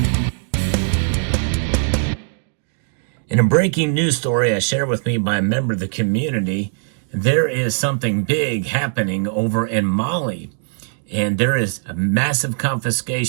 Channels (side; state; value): left; silent; digital silence